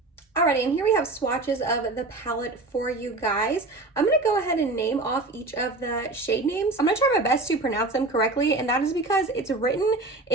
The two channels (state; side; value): quieter; left; 3.1 dB